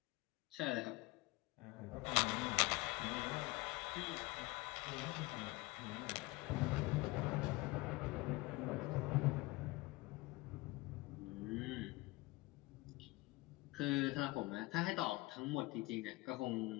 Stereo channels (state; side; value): quieter; right; 22.0 dB